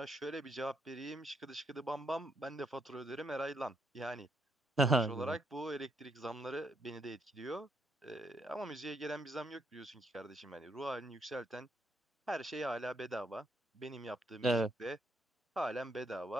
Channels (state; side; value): normal; both; correlation 0.75